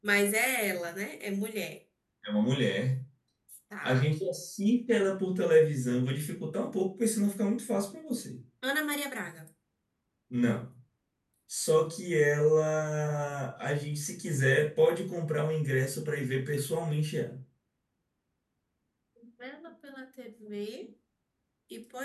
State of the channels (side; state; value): both; identical; correlation 1.00